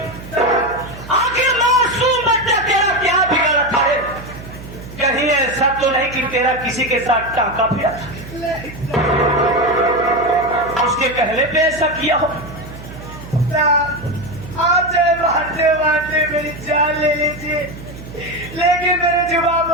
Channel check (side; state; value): right; noise; hum, 14 dB below the sound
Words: आखिर मासूम बच्चा तेरा क्या बिगड़ा था? कहीं ऐसा तो नहीं कि तेरा किसी के साथ टांका पिया था, उसके कहने पे ऐसा किया हो? आप चाहे मारते मारते मेरी जान ले लीजिए, लेकिन मेरे जुबान